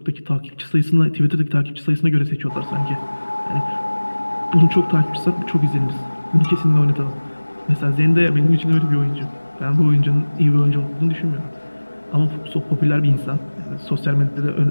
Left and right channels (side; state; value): both; inverted; correlation -1.00